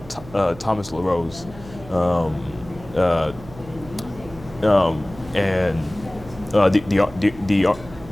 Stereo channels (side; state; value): right; noise; hum, 18 dB below the sound